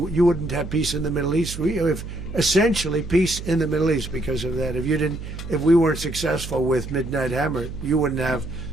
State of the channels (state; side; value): noise; right; hum, 9 dB below the sound